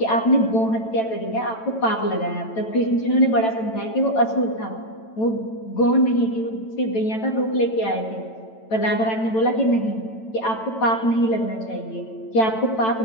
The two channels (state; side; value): late; right; 9.0 ms